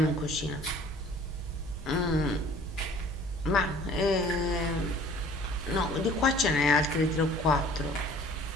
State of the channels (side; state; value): both; normal; correlation 0.51